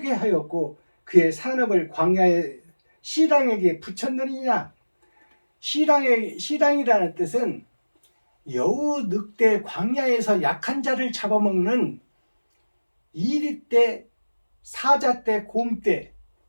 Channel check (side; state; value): both; inverted; correlation -1.00